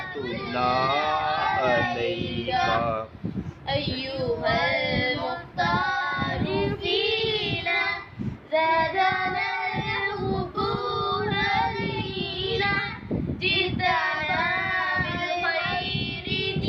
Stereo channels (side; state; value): both; identical; correlation 1.00